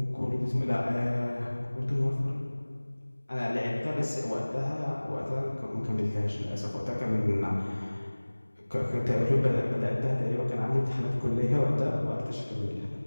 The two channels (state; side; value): inverted; both; correlation -1.00